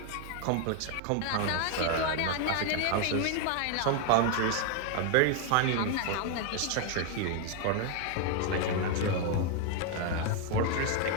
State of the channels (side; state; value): both; different; correlation 0.01